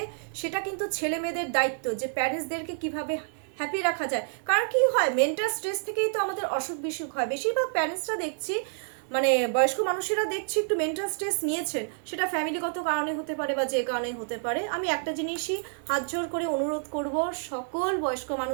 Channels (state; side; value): silent; left; digital silence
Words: সেটা কিন্তু ছেলে মেয়েদের দায়িত্ব, যে প্যারেন্টসদেরকে কিভাবে হ্যাপি রাখা যায়। কারণ কি হয়, মেন্টাল স্ট্রেস থেকেই তো আমাদের অসুখ বিসুখ হয়। বেশিরভাগ প্যারেন্টসরা দেখছি মানে বয়স্ক মানুষেরা দেখছি একটু মেন্টাল স্ট্রেস নিয়েছেন, সেটা ফ্যামিলিগত কারণে হতে পারে বা যে কারণে হতে পারে। আমি একটা জিনিসই হাত জোর করে অনুরোধ করব সকল বয়স্ক